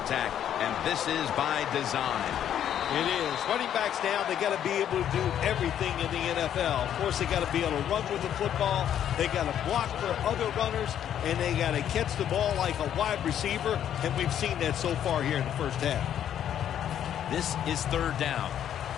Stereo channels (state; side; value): quieter; right; 10.1 dB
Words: and this is by design. It is. Running backs now, they got to be able to do everything in the NFL. Of course, they got to be able to run with the football. They got to block for other runners, and they got to catch the ball like a wide receiver, and we've seen that so far here in the first half. This is 3rd down.